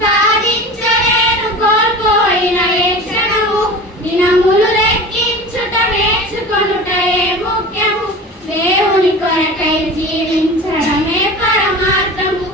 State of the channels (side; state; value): both; normal; correlation 0.35